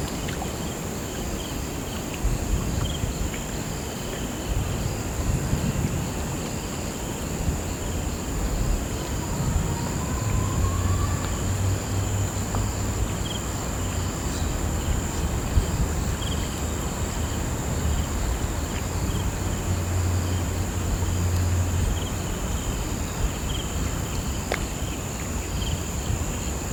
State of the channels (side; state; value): both; identical; correlation 1.00